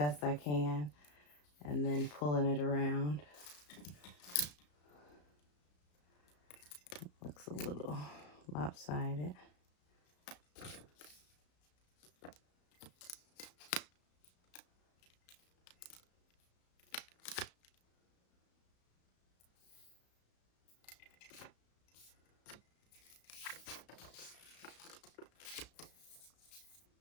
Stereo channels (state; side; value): late; right; 34 ms